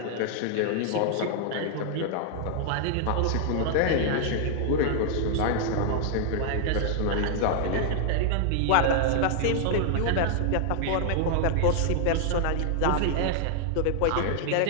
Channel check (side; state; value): both; different; correlation 0.00